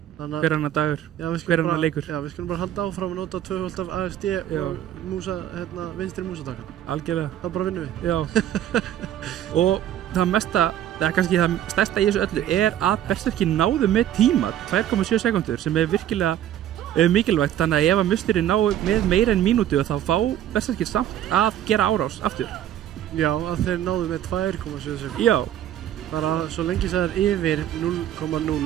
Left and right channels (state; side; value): quieter; left; 11.5 dB